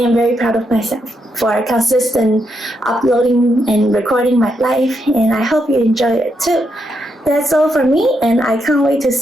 very proud of myself for consistent uploading and recording my life, and I hope you enjoy it too. That's all for me, and I can't wait to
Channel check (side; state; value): both; normal; correlation 0.81